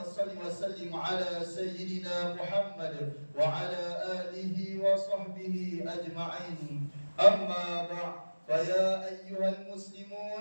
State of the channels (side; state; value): both; inverted; correlation -1.00